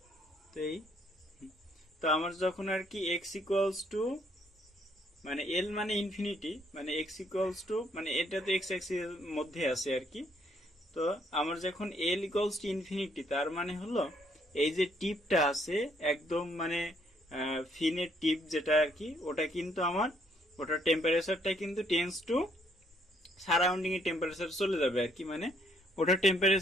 তো এই তো আমার যখন আর কি এক্স ইকুয়ালস টু মানে এল মানে ইনফিনিটি, মানে এক্স ইকুয়ালস টু মানে এটা তো এক্স অ্যাক্সিস এর মধ্যে আছে আর কি। তো আমার যখন এল ইকুয়ালস টু ইনফিনিটি, তার মানে হলো এই যে টিপটা আছে একদম মানে ফিনের টিপ যেটা আর কি, ওটা কিন্তু আমার ওটার টেম্পারেচারটা কিন্তু টেন্স টু সারাউন্ডিং এর টেম্পারেচার চলে যাবে আর কি, মানে ওটার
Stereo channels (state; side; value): normal; both; correlation 0.69